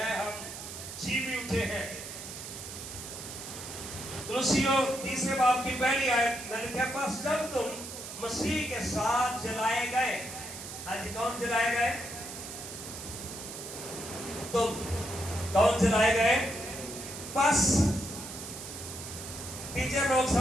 ہم جی بھی اٹھے ہیں۔ کولوسیوں 3 باب کی پہلی آیت میں لکھا ہے، پس جب تم مسیح کے ساتھ جلائے گئے، ہاں جی، کون جلائے گئے؟ تم کون جلائے گئے؟ پس ٹیچر لوگ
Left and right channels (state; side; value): noise; right; hiss, 10 dB below the sound